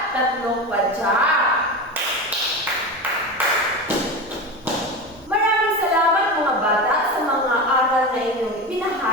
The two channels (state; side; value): normal; both; correlation 0.24